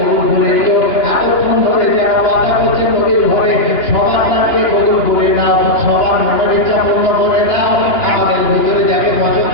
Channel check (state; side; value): late; right; 2.9 ms